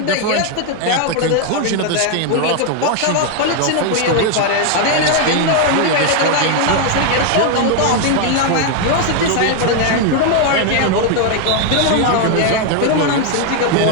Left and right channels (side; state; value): both; different; correlation 0.01